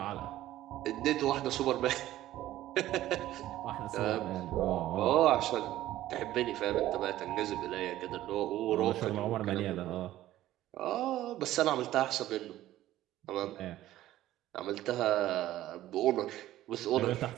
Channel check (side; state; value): left; quieter; 14.3 dB